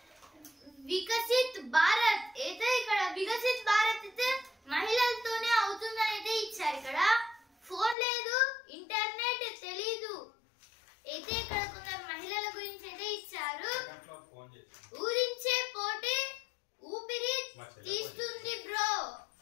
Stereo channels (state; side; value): drops out; right; at 8.0 s